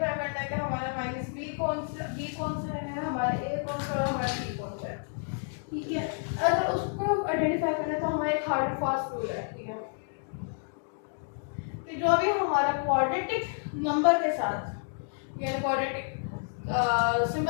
करना है कि हमारा माइनस b कौन सा है, हमारा a कौन सा है, हमारा b कौन सा है। ठीक है, अगर उसको आइडेंटिफाई करना है तो हमारा एक हार्ड एंड फास्ट रूल है। ठीक है, कि जो भी हमारा क्वाड्रेटिक नंबर के साथ यानी क्वाड्रेटिक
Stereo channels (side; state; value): right; silent; 58 dB below the other